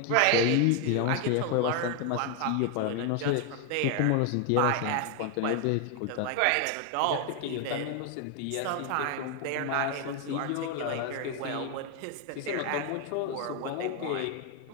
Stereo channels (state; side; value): different; both; correlation 0.01